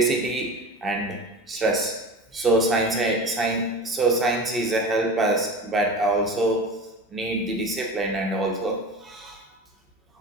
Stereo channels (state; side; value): normal; both; correlation 0.31